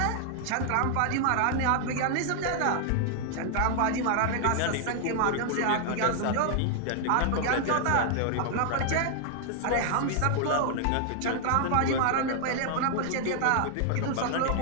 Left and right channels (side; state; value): both; different; correlation 0.00